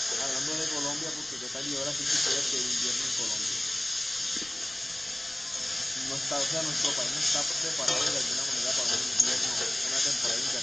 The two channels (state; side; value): noise; right; rumble, 23 dB below the sound